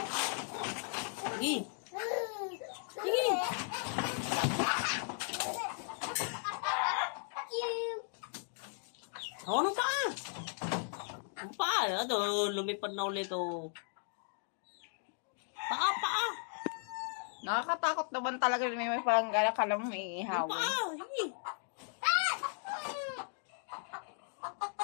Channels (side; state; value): right; silent; 53 dB below the other